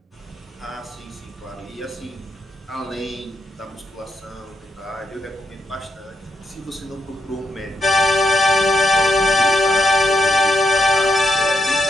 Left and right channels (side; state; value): both; normal; correlation 0.80